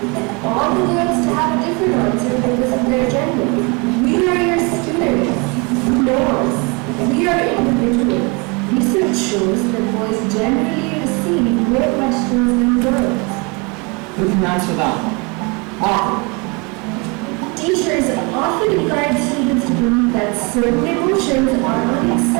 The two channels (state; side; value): quieter; left; 29.9 dB